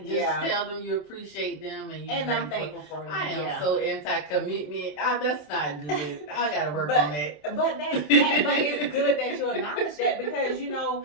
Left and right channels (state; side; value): late; right; 27 ms